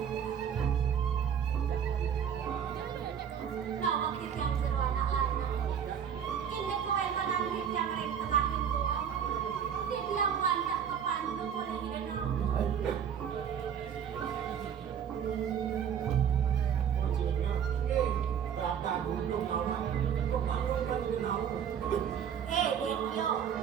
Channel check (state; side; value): quieter; left; 8.2 dB